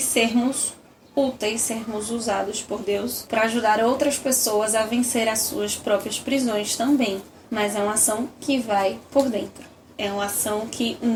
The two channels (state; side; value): identical; both; correlation 1.00